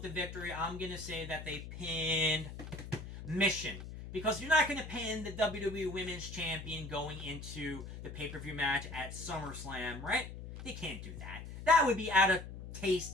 the victory. I'm going to say that they pinned Michonne. Because you're not going to pin the WWE Women's Champion going into the pay-per-view match at SummerSlam, right? They can't do that. That would be out of taste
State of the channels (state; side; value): noise; left; hum, 10 dB below the sound